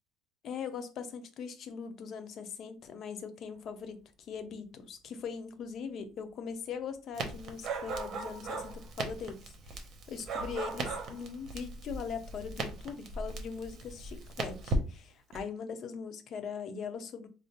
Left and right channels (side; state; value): both; normal; correlation 0.59